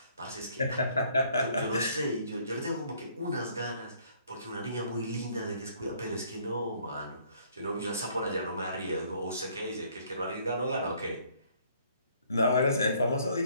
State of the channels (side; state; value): both; inverted; correlation -0.62